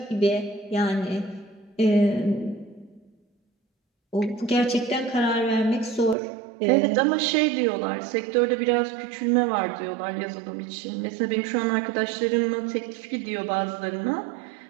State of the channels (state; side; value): drops out; left; at 6.2 s